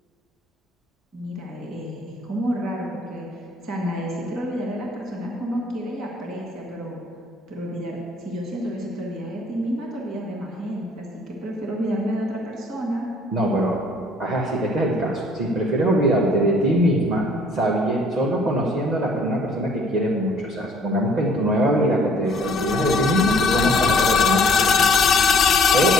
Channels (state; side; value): normal; both; correlation 0.57